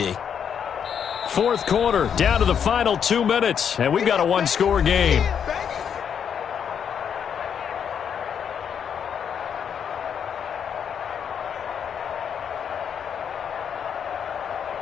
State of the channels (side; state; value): right; quieter; 7.9 dB